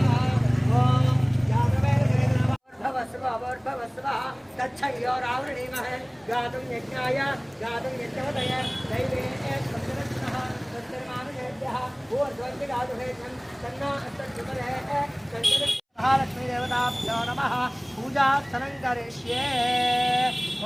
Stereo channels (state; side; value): identical; both; correlation 1.00